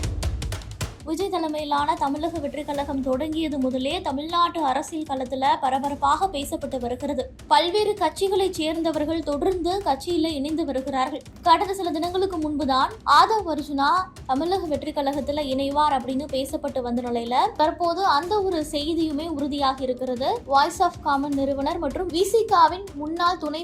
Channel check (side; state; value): both; identical; correlation 1.00